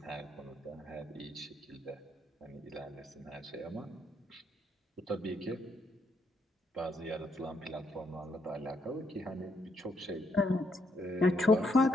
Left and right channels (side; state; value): both; normal; correlation 0.75